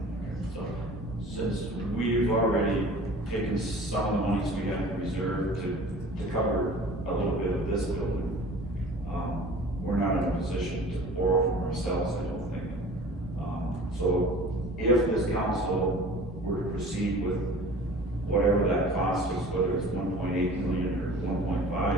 So, since we've already taken some of the monies we have in reserve to cover a little bit of this building, we're not in a position to borrow from ourselves, I don't think. So if this council were to proceed with whatever that cost is, whether it's 1.8 million or 1.5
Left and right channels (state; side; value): normal; both; correlation 0.44